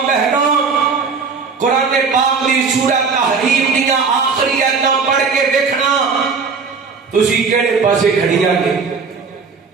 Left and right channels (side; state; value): left; quieter; 5.1 dB